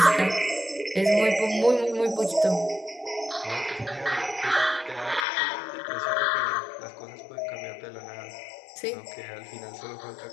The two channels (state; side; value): drops out; right; at 5.2 s